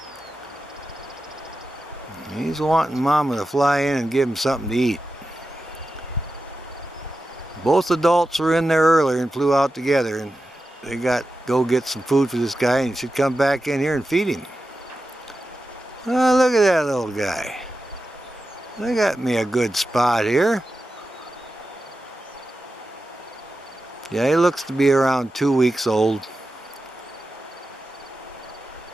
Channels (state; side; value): normal; both; correlation 0.92